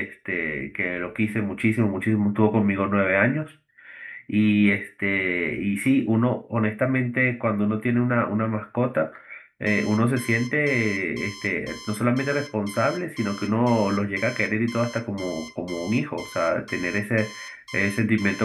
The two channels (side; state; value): both; identical; correlation 1.00